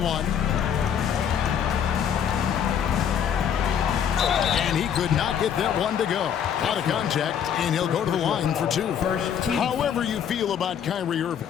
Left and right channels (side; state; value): right; quieter; 8.6 dB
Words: And he could not get that one to go. Out of contact, and he'll go to the line for 2. However you feel about Kyrie Irving,